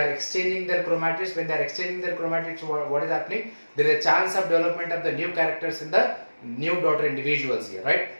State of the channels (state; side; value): inverted; both; correlation -1.00